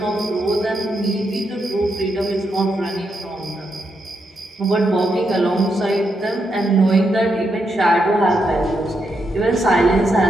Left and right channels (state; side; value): normal; both; correlation 0.82